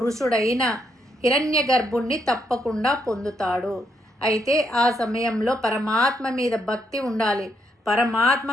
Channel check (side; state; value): both; normal; correlation 0.76